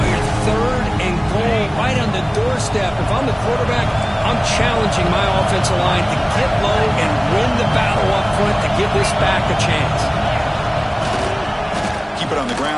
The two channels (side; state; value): both; identical; correlation 1.00